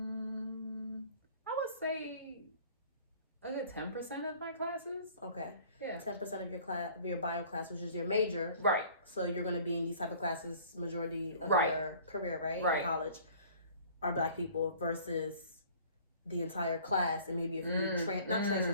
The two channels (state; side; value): inverted; both; correlation -0.51